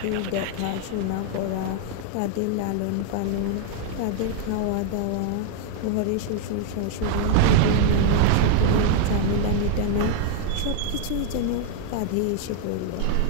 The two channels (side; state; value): both; different; correlation 0.00